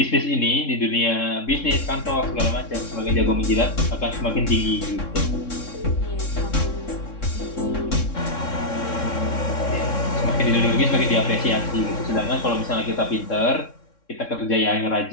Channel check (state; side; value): late; right; 3.6 ms